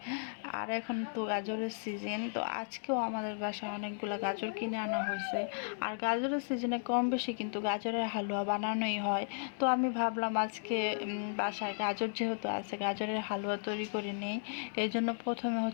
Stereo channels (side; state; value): right; silent; digital silence